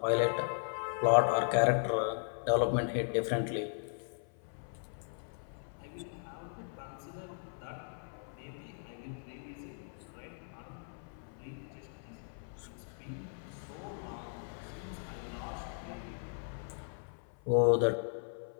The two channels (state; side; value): silent; right; 53 dB below the other